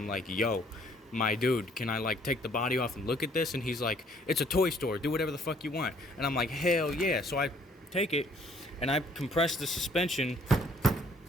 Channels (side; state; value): both; normal; correlation 0.62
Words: like, yo, my dude, can I like take the body off and look at this? And he's like, it's a toy store, do whatever the fuck you want. And I'm like, hell yeah. So I take it and I compress the suspension,